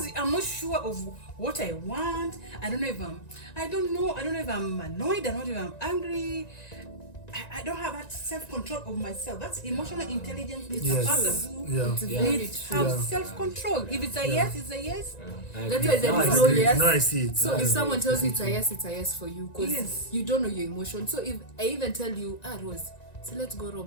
I'm not sure of what I want. I don't know if I'm annoyed. I don't know if I'm angry. I don't have that self-control of myself. That's emotional intelligence. It's Yes. a person who Yeah. It's Yeah. very needs true. have Yeah. self-control. If it's a yes, it's a yes. That's why there I is no agree. yes. Now I see it. So Now I if see someone it. tells you it's a yes for you, because Yes. you don't know your emotion. So if I even tell you, Rose, so let's go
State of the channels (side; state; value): right; late; 1.9 ms